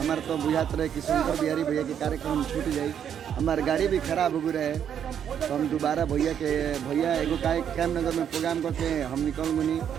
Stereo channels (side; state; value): left; quieter; 8.8 dB